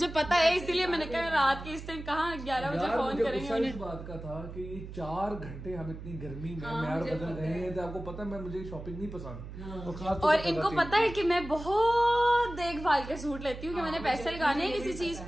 पता है, इसीलिए मैंने कहा रात के इस टाइम कहाँ 11 बजे फोन करेंगे उन्हें। इस बात का था कि ये 4 घंटे हम इतनी गर्मी में मैर बदल गए हैं तो आपको पता है मुझे शॉपिंग नहीं पसंद। और इनको पता है कि मैं बहुत देखभाल के सूट लेती हूँ कि मैंने पैसे लगाने हैं किसी चीज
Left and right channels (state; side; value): noise; right; hum, 11 dB below the sound